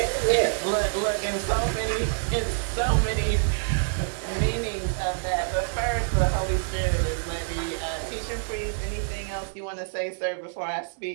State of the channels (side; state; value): left; silent; digital silence